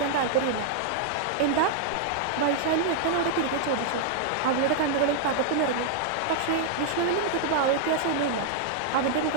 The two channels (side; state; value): both; different; correlation -0.01